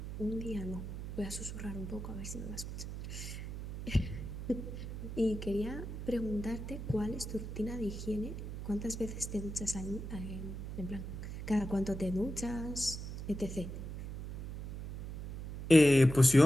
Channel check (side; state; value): right; noise; hum, 8 dB below the sound